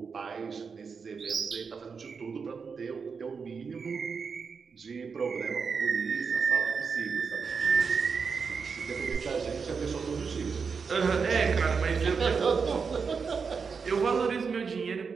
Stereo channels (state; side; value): quieter; left; 5.5 dB